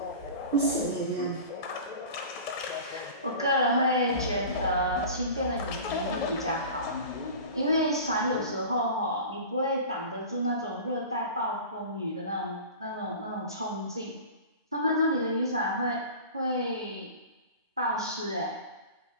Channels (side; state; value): both; inverted; correlation -0.37